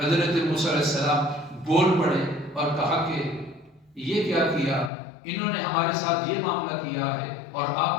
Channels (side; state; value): right; drops out; at 4.9 s